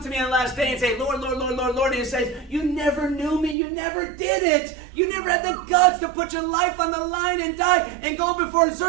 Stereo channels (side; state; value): left; drops out; at 3.6 s